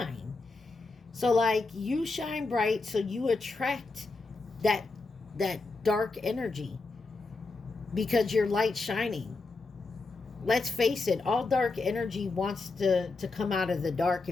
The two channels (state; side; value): quieter; right; 3.7 dB